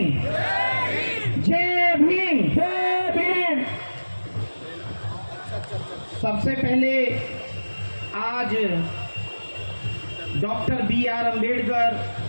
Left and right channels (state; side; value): inverted; both; correlation -1.00